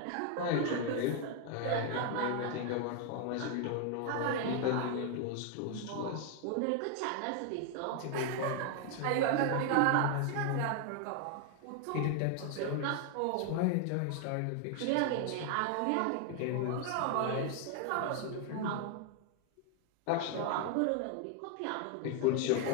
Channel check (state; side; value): different; both; correlation 0.00